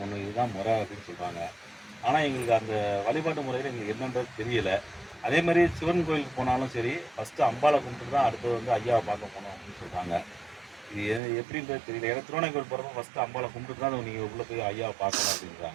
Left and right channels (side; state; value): left; drops out; at 11.2 s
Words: இதுதான் முறை அப்படின்னு சொல்கிறாங்க. ஆனால் எங்களுக்கு அந்த வழிபாட்டு முறையில் எங்களுக்கு என்னன்றது தெரியலை. அதே மாதிரி சிவன் கோயிலுக்கு போனாலும் சரி, ஃபஸ்ட்டு அம்பாவை கும்பிட்டு தான் அடுத்தது வந்து ஐயாவை பார்க்க போகணும் அப்படின்னு சொல்கிறாங்க. இது எப்படின்றது தெரியல. ஏன்னா திருவண்ணாமலை போகிறப்ப ஃபஸ்ட்டு அம்பாவை கும்பிட்டு தான் நீங்கள் உள்ளே போய் ஐயாவை பார்க்கணும்